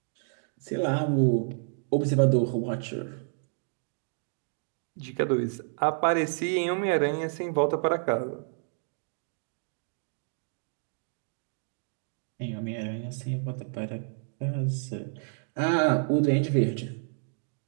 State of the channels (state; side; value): silent; left; digital silence